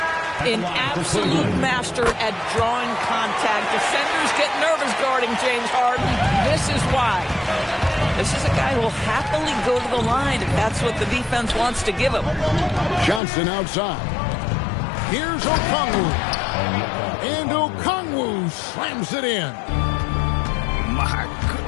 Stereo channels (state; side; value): drops out; right; at 13.2 s